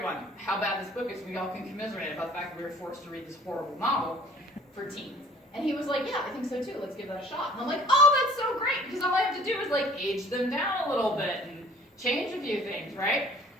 how bad this book is. We all can commiserate about the fact that we were forced to read this horrible novel for teens. And he was like, yeah, I think so too. Let's give that a shot. And I'm like, oh, that's so great, because all I have to do is like age them down a little bit and change a few things, right?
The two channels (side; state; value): both; normal; correlation 0.52